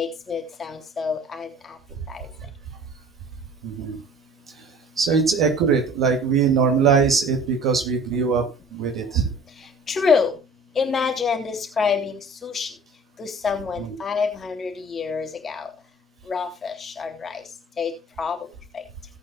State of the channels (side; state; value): both; normal; correlation 0.47